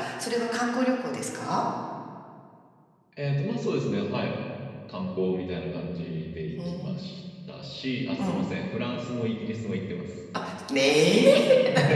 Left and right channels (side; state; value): both; identical; correlation 1.00